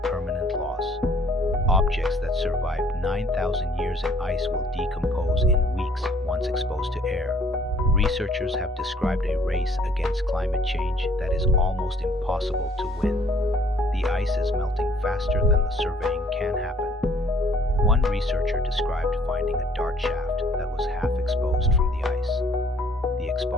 loss. Objects that survived 9,000 years in ice will decompose in weeks once exposed to air. Researchers have described a race against climate change that is almost impossible to win. The ice is melting faster than the surveying can happen. One researcher described finding a dart shaft that was half exposed from the ice. The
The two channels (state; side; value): normal; both; correlation 0.60